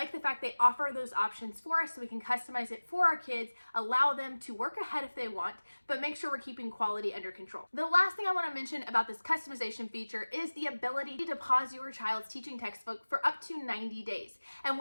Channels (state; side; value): inverted; both; correlation -1.00